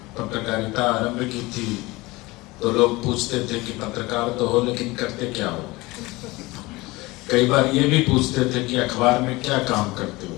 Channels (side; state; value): right; quieter; 21.7 dB